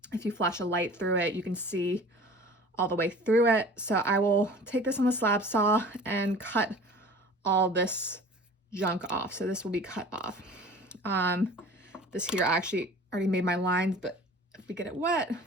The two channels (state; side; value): normal; both; correlation 0.44